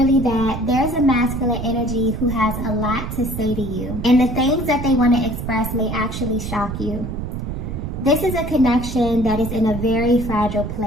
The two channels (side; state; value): right; noise; rumble, 6 dB below the sound